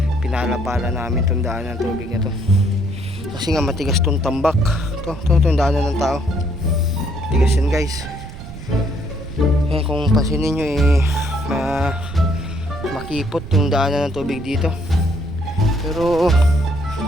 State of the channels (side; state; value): right; noise; rumble, 13 dB below the sound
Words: pinalapala namin itong daan ng tubig na to kasi nga matigas tong tambak. Itong daanan ng tao, matigas yan guys. Kung pansinin nyo makipot yung daanan ng tubig dito, pero